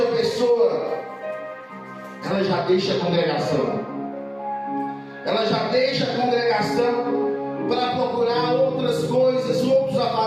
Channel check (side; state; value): both; identical; correlation 1.00